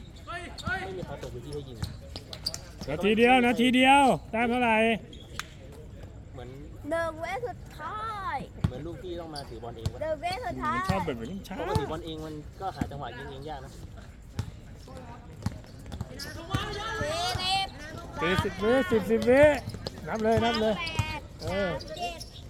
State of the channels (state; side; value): identical; both; correlation 1.00